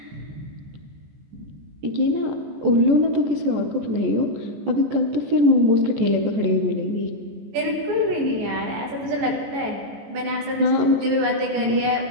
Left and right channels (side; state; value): left; late; 14 ms